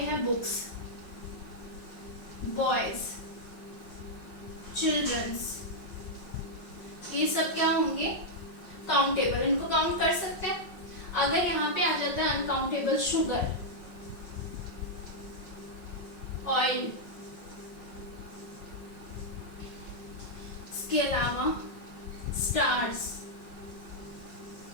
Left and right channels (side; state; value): right; late; 5.5 ms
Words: बुक्स, बॉयज, चिल्ड्रंस, ये सब क्या होंगे, काउंटेबल, इनको काउंट कर सकते हैं। अगर यहाँ पे आ जाता है अनकाउंटेबल, शुगर, ऑयल, इसके अलावा स्टार्स,